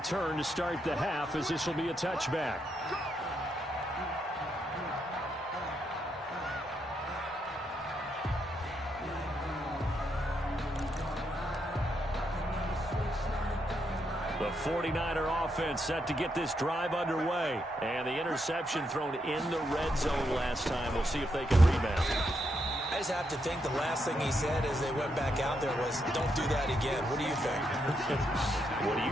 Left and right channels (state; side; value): normal; both; correlation 0.80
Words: to start the half, as this will be a touchback. The 49er offense set to get this drive underway. And the interception thrown in the red zone last time. We'll see if they can rebound. I just have to think the last thing he said as they went back out there was, don't do that again. What do you think? What do